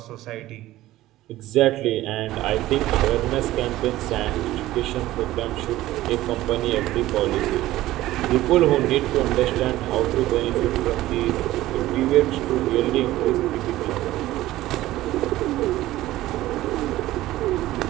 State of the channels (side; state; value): left; quieter; 15.8 dB